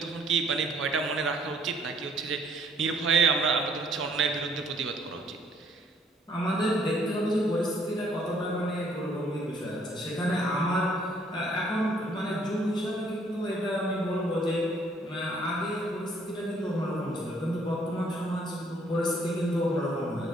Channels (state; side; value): normal; both; correlation 0.63